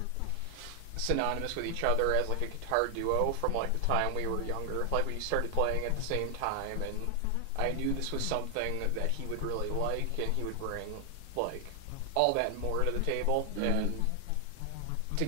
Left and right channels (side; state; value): both; different; correlation 0.00